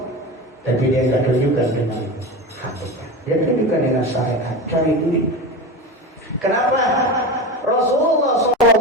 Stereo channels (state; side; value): normal; both; correlation 0.25